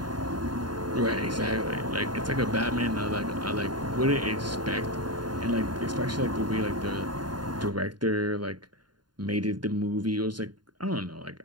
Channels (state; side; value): late; left; 0.71 ms